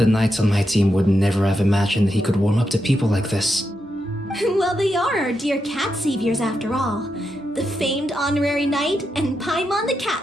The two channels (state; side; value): normal; both; correlation 0.85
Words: knights on my team would never have imagined that he could warm up to people like this. Well, they are our dear cat saviors after all. The famed honorary knight and Paimon the